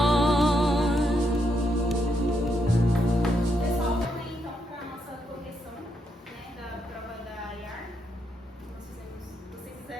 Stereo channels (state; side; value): normal; both; correlation 0.79